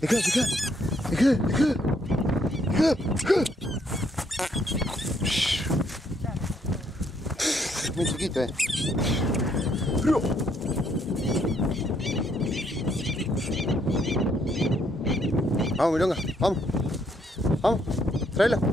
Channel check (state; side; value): normal; both; correlation 0.71